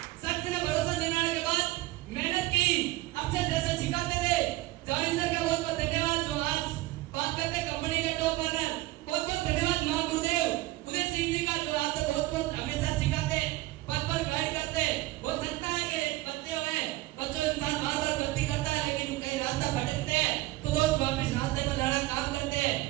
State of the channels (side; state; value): left; quieter; 18.2 dB